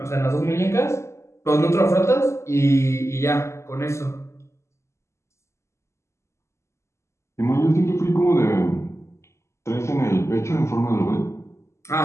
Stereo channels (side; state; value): right; late; 0.13 ms